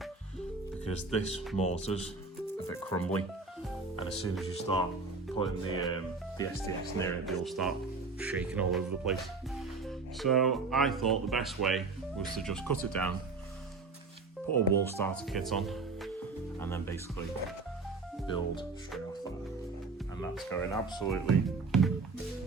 because this mortar's a bit crumbly, and as soon as you start putting the STX near it, they'll start shaking all over the place. So I thought the best way was to just cut it down, put a wall starter kit on, and then basically build straight off that. And that's going absolutely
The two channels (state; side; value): quieter; left; 4.0 dB